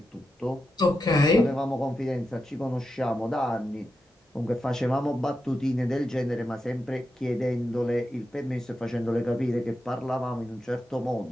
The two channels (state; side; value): normal; both; correlation 0.88